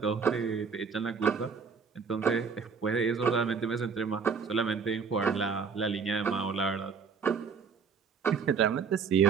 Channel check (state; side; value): quieter; left; 5.9 dB